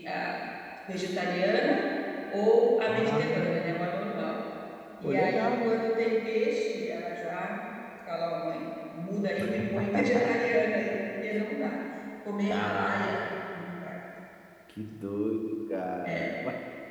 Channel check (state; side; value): identical; both; correlation 1.00